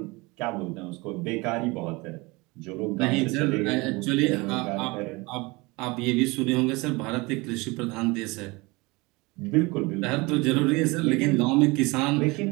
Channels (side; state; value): left; quieter; 24.5 dB